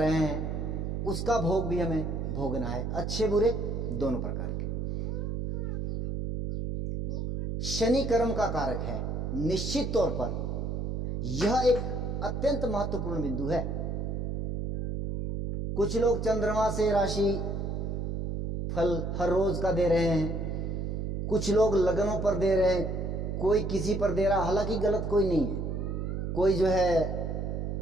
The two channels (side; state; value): right; noise; hum, 2 dB below the sound